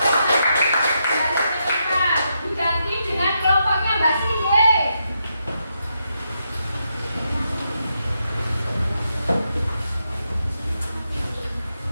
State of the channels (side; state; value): both; inverted; correlation -0.82